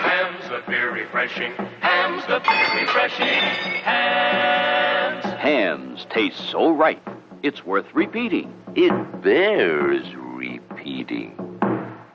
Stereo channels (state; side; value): identical; both; correlation 1.00